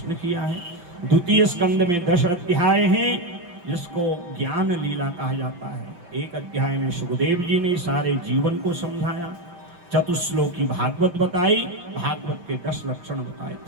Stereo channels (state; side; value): late; left; 5.8 ms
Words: किया है। द्वितीय स्कंद में 10 अध्याय हैं जिसको ज्ञान लीला कहा जाता है। एक अध्याय में सुखदेव जी ने सारे जीवन को समझाया। चतुश्लोकी भागवत बताई, भागवत के 10 लक्षण बताए।